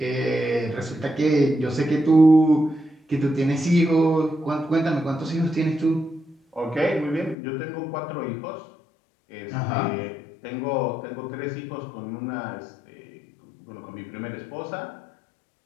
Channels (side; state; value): right; drops out; at 7.4 s